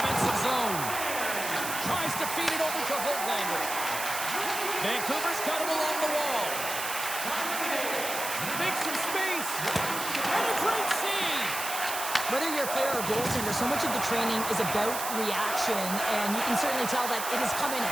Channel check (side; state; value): right; noise; hiss, 5 dB below the sound